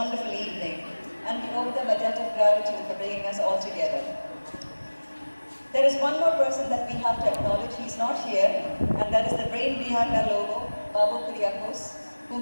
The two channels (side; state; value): both; inverted; correlation -1.00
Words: evening, and we owe them a debt of gratitude for bringing us all together. There is one more person that we have to acknowledge. He's not here, and that is the brain behind our logo, Babu Kuriakos, who